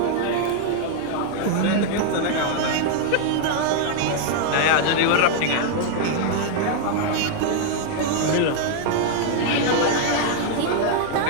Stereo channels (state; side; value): different; both; correlation 0.00